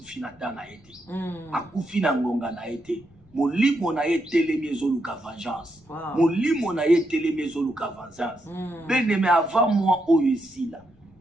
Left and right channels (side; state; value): left; noise; rumble, 30 dB below the sound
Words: dana ete. Akufi na ngonga na ete. Molimo na ye telemi ezoluka vengeance. Molimo na ye telemi ezoluka vengeance. Beneme avant moi oyo esila.